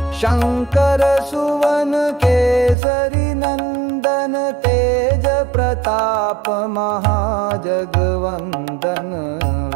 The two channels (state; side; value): drops out; left; at 2.8 s